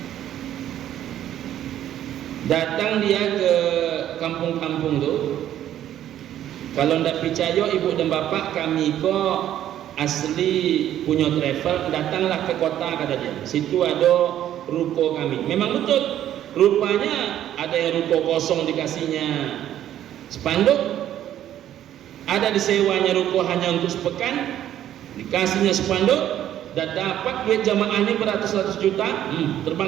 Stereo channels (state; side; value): quieter; left; 11.6 dB